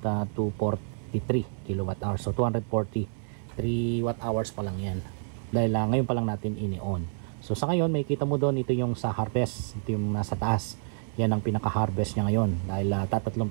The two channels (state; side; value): silent; left; 57 dB below the other